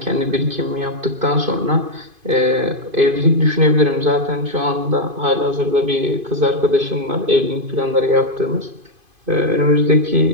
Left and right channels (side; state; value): left; late; 2.5 ms